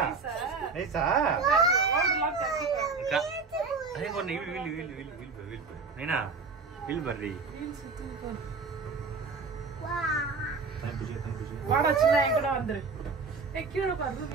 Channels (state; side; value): quieter; left; 4.5 dB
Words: நைஸா நைனா வில் பர்ரி வாடா சின்ன என் கூட வந்துரு. கீழே பாரு